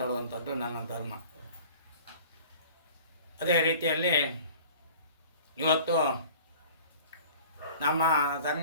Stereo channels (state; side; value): inverted; both; correlation -0.45